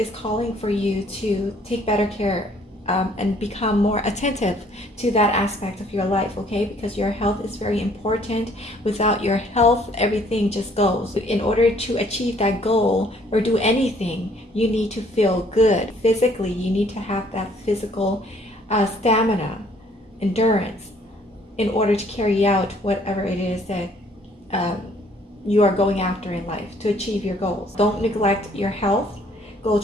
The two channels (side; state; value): both; normal; correlation 0.61